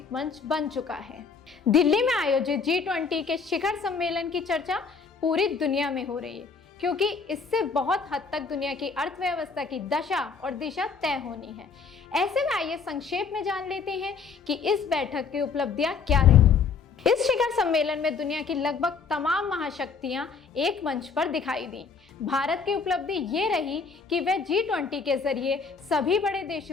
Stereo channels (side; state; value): right; quieter; 5.3 dB